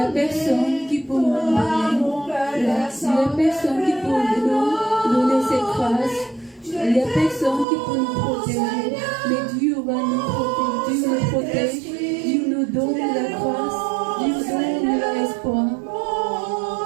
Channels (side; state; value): left; drops out; at 7.7 s